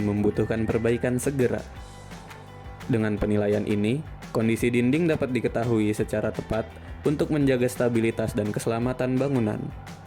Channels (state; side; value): identical; both; correlation 1.00